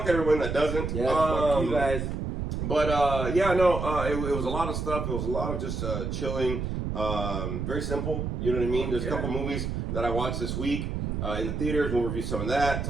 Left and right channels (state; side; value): noise; right; rumble, 3 dB below the sound